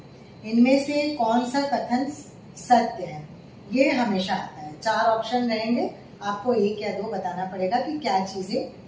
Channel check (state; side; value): identical; both; correlation 1.00